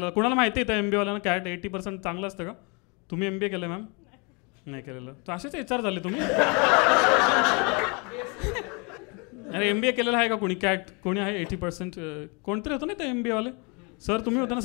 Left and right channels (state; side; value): quieter; right; 31.6 dB